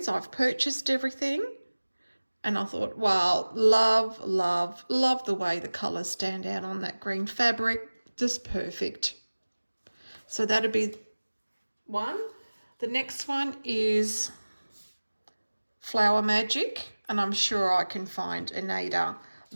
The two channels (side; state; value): both; inverted; correlation -1.00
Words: I've purchased everything, and I thought, wow, love the way the colours stand out on that green fabric. Just perfect. So that'll be one. The next one is Flower Magic, and I'm sure I can find an Aida